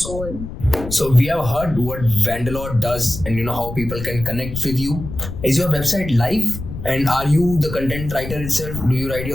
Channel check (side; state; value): left; noise; rumble, 9 dB below the sound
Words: goal. So we have heard what Wanderlore does, and how people can connect with you. Is your website live? And are you the content writer itself? Do you write